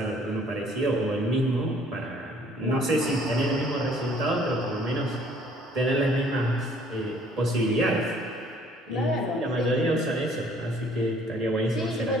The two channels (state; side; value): normal; both; correlation 0.59